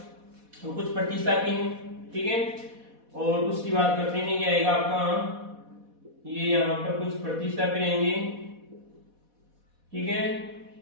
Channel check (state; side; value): late; left; 4.1 ms